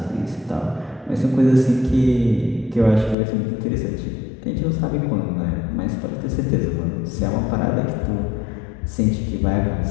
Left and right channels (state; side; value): drops out; right; at 3.2 s